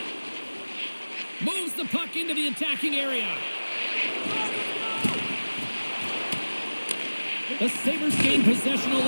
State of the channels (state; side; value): inverted; both; correlation -1.00